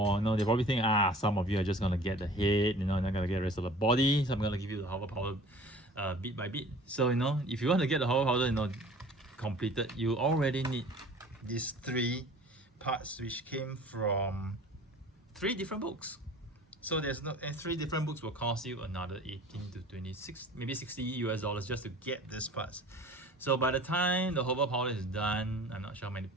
think, some of you are just gonna get the head, they're not gonna get the rest of the body, so I'm gonna give you the hover powder bit by bit. So if you want to get the hover powder completed, you already need these 3 parts, which came from 3 different books. So and 3 different books will cost you another 18 to 26, maybe 60 US dollars just to get this parts. So by the time the hover powder is done, I'm not sure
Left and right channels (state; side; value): normal; both; correlation 0.46